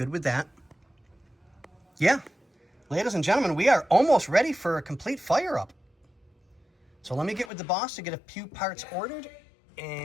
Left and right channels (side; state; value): right; drops out; at 7.5 s